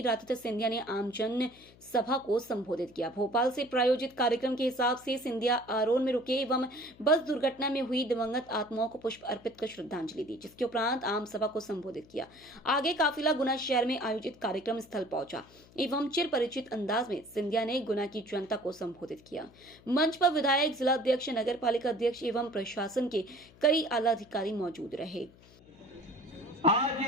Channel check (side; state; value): left; noise; hum, 25 dB below the sound